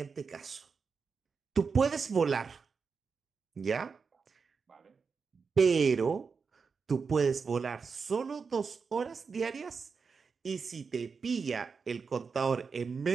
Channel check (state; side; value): quieter; left; 5.3 dB